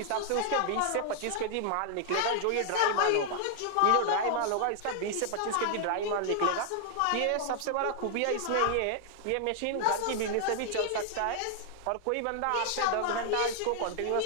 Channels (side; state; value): both; different; correlation 0.00